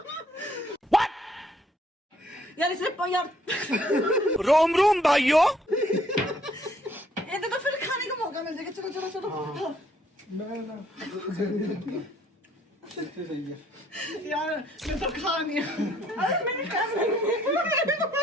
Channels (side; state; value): both; normal; correlation 0.65